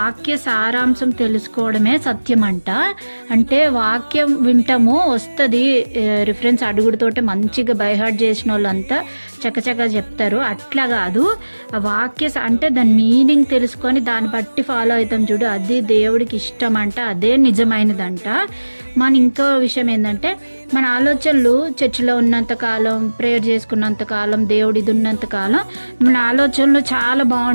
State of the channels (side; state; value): both; inverted; correlation -1.00